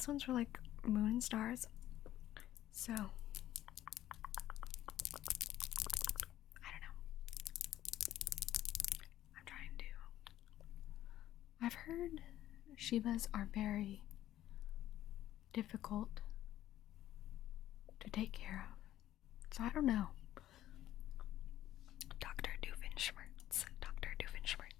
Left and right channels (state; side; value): quieter; right; 13.1 dB